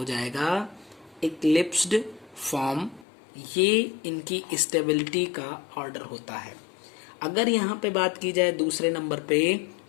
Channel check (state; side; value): drops out; right; at 3.1 s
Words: जाएगा इक्लिप्स्ड फॉर्म, ये इनकी स्टेबिलिटी का ऑर्डर होता है। अगर यहाँ पे बात की जाए दूसरे नंबर पे